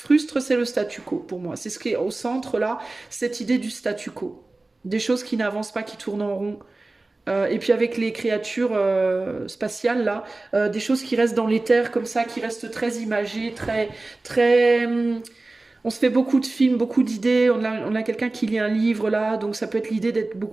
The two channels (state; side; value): quieter; left; 3.1 dB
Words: c'est le statu quo, pour moi. C'est ce qui est au centre, là, cette idée du statu quo. Des choses qui n'avancent pas, qui tournent en rond. Et puis avec les créatures spatiales, là, des choses qui restent dans l'éther, comme ça, qui restent très imagées, très... On se fait beaucoup de films, beaucoup d'idées. On a quelqu'un qui lit un livre, là, donc ça peut être l'idée d'être